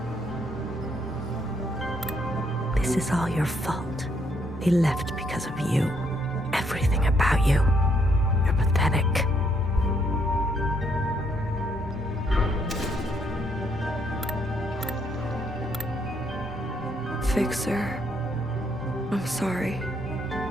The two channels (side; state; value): both; normal; correlation 0.72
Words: This is all your fault. They left because of you. Everything about you. You're pathetic. Fixer. I'm sorry.